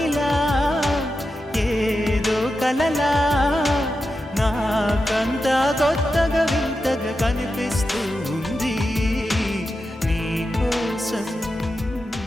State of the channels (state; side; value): normal; both; correlation 0.90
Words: ఏదో కలలా నాకంతా కొత్తగా వింతగా కనిపిస్తూ